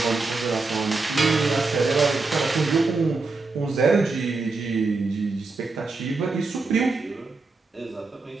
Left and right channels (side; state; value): left; quieter; 3.8 dB